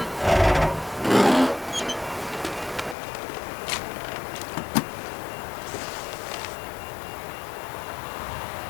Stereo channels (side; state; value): right; drops out; at 3.0 s